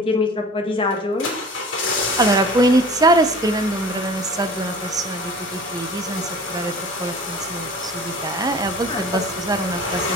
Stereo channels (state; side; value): normal; both; correlation 0.43